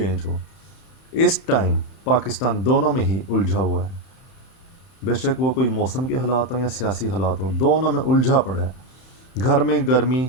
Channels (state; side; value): late; right; 31 ms